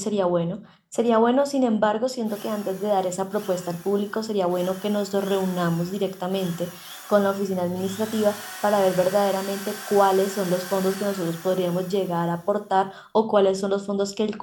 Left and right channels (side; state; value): both; identical; correlation 1.00